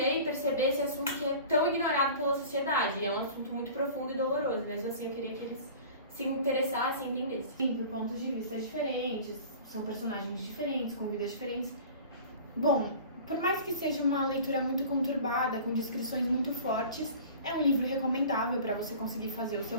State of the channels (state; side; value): inverted; both; correlation -0.42